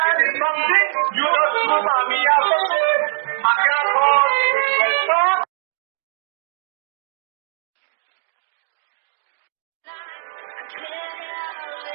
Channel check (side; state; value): left; silent; digital silence